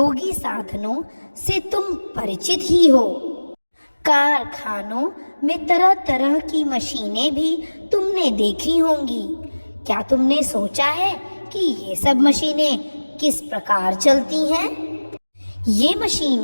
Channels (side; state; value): both; inverted; correlation -1.00